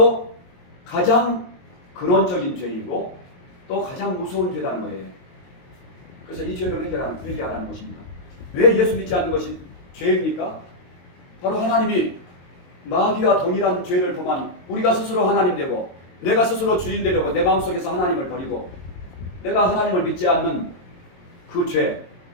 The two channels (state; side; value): late; right; 22 ms